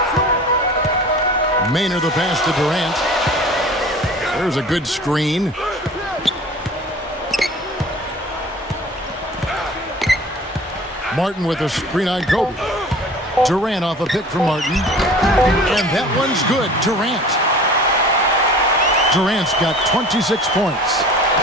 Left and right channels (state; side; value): normal; both; correlation 0.43